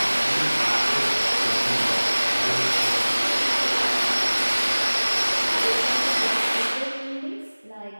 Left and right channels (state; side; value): inverted; both; correlation -1.00